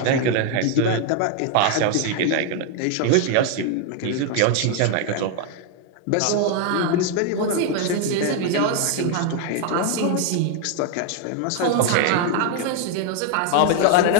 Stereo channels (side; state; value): both; different; correlation 0.01